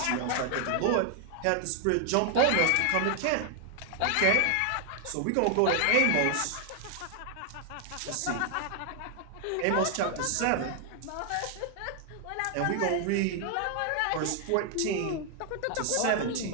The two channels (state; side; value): different; both; correlation 0.00